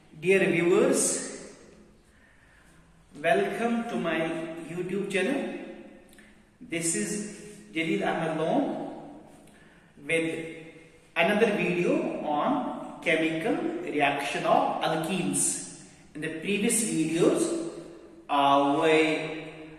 dear viewers. Welcome to my YouTube channel. This is Jalil Ahmed Lone with another video on chemical reaction of alkenes. In the previous videos, we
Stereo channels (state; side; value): identical; both; correlation 1.00